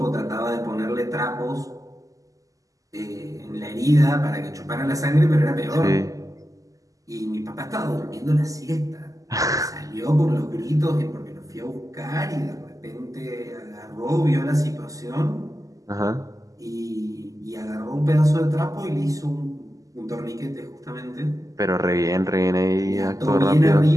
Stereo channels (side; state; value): left; late; 0.17 ms